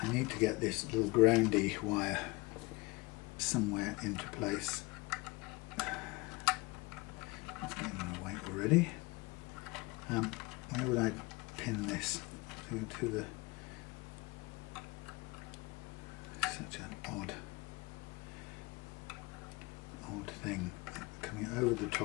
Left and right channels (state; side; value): quieter; right; 24.6 dB